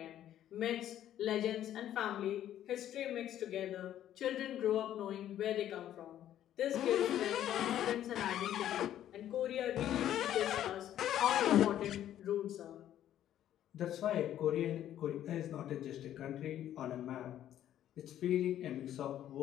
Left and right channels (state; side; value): quieter; right; 11.6 dB